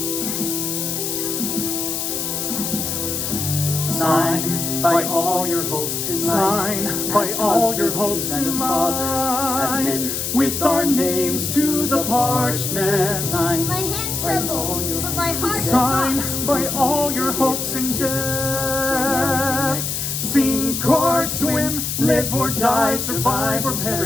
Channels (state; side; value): noise; left; hiss, 2 dB below the sound